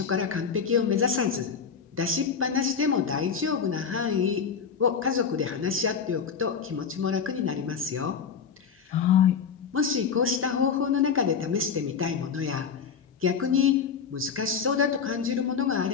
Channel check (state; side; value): quieter; right; 6.4 dB